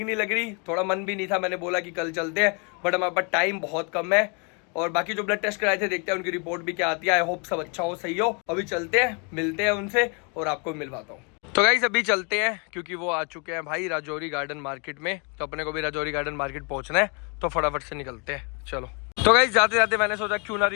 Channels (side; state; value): right; quieter; 34.6 dB